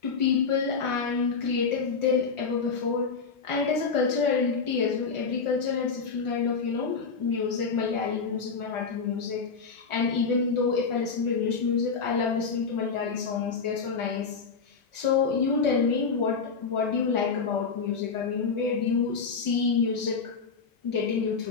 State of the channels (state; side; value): quieter; right; 5.2 dB